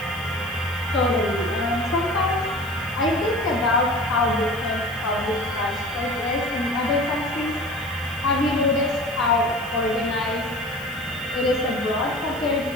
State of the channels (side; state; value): right; noise; hiss, 19 dB below the sound